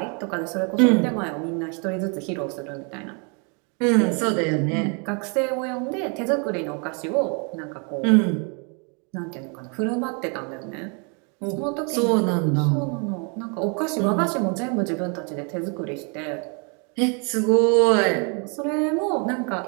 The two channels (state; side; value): quieter; left; 35.7 dB